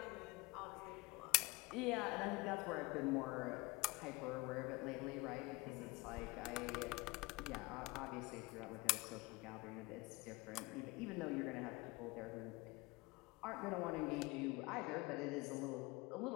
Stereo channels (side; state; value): right; quieter; 22.8 dB